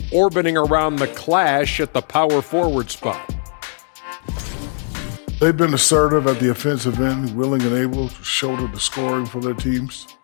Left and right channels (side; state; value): right; silent; 56 dB below the other